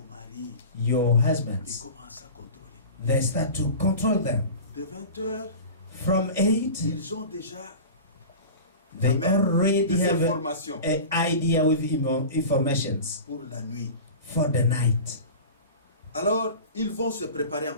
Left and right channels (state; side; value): inverted; both; correlation -0.34